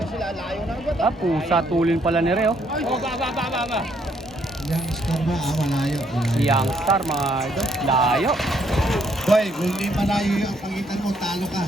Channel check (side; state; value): both; normal; correlation 0.70